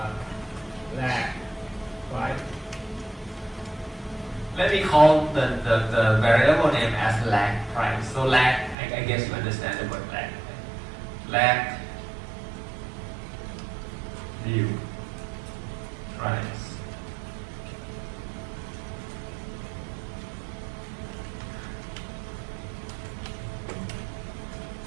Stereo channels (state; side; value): drops out; left; at 8.8 s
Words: Lag, right? Let me call the variable name as lag price. So lag, I guess you understand the word lag. Lag view price.